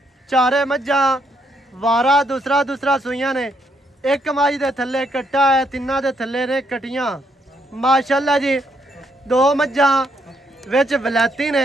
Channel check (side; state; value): both; normal; correlation 0.73